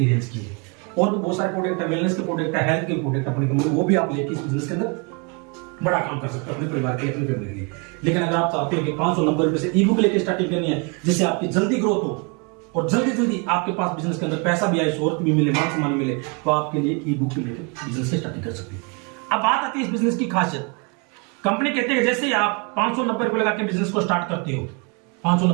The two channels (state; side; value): quieter; left; 32.5 dB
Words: रेंज की है। और भी बहुत सारे प्रोडक्ट है, वेलनेस के प्रोडक्ट है, हेल्थ के प्रोडक्ट अपनी कंपनी, वो भी आप लेके इस बिजनेस के अंदर बड़ा काम कर सकते हो अपने परिवार के लिए, अपनी फैमिली के लिए। लेकिन अगर आप चाहते हो कि 590 रुपए से ई बुक लेके स्टार्टिंग करनी है, जिससे आपकी जल्दी ग्रोथ हो और जल्दी जल्दी आपके पास बिजनेस के अंदर पैसा भी आए, शोहरत भी मिले, मान सम्मान मिले, तो आपके लिए ई बुक लेकर बिजनेस से स्टार्टिंग कर सकते हो। अब बात आती है इस बिजनेस की खासियत। कंपनी कहते हैं जैसे ही आप 590 रुपए लगा के बिजनेस को स्टार्ट करते हो,